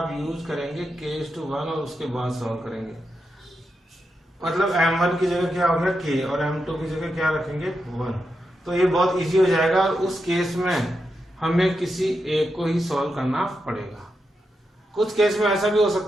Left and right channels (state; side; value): normal; both; correlation 0.86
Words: यूज करेंगे k:1 और उसके बाद सॉल्व करेंगे। मतलब M1 की जगह क्या होगा k और M2 की जगह क्या रखेंगे 1। तो ये बहुत इजी हो जाएगा। उस केस में हमें किसी एक को ही सॉल्व करना पड़ेगा। कुछ केस में ऐसा भी हो